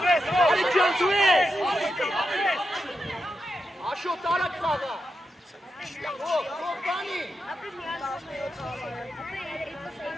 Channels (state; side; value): normal; both; correlation 0.87